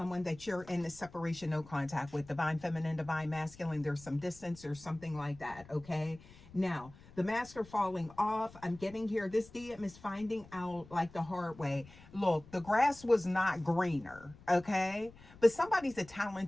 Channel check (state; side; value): noise; left; rumble, 21 dB below the sound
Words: that you're in the separation, no contact with, divine feminine, divine masculine. There's some distance or something like that, okay? Now, the masks are falling off. I'm getting here. This DM is finding out like the hard way. Look, the grass was not greener, okay? But somebody's a